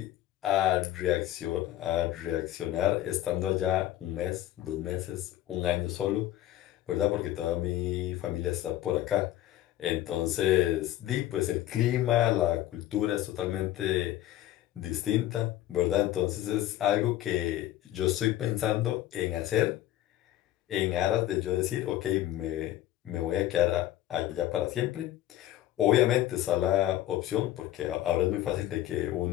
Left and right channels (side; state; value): right; quieter; 13.7 dB